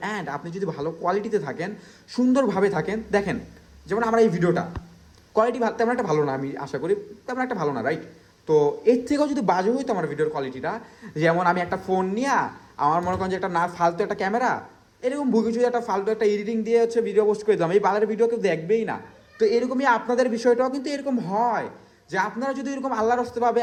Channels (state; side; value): identical; both; correlation 1.00